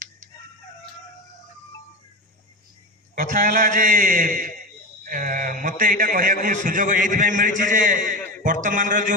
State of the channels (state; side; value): normal; both; correlation 0.23